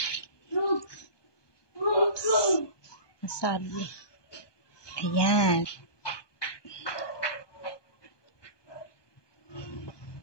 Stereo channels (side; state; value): right; late; 1.2 ms